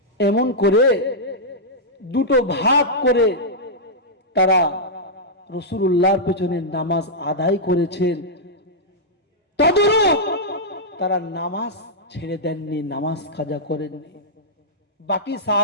এমন করে দুটো ভাগ করে তারা রাসূলুল্লাহর পিছনে নামাজ আদায় করেছেন। তদরূপ তারা নামাজ ছেড়ে দেননি, নামাজ কাজা করেননি। বাকি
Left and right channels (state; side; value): normal; both; correlation -0.09